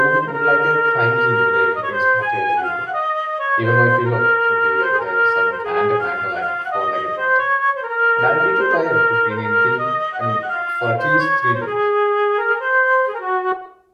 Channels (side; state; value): both; identical; correlation 1.00